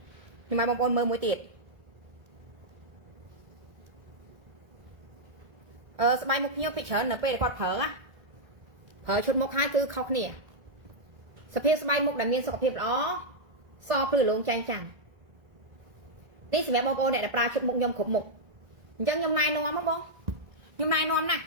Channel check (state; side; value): late; left; 1.6 ms